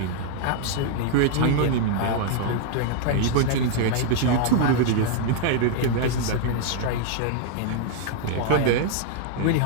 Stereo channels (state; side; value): different; both; correlation 0.00